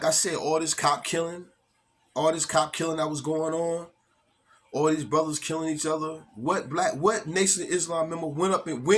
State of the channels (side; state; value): both; identical; correlation 1.00